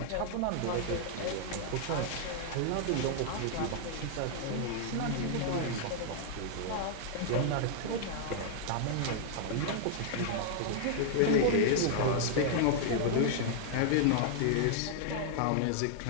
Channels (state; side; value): different; both; correlation -0.01